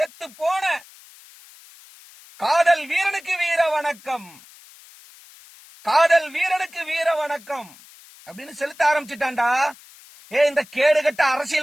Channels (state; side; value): noise; left; hiss, 23 dB below the sound